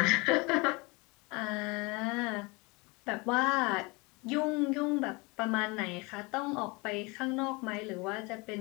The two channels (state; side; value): quieter; right; 26.9 dB